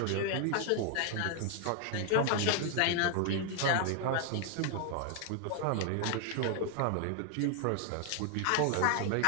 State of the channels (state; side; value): different; both; correlation 0.00